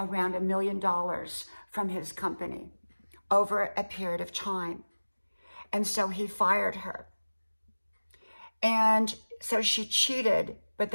$1 million from his company over a period of time. And so he fired her. And so she cheated, but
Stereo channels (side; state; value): both; inverted; correlation -1.00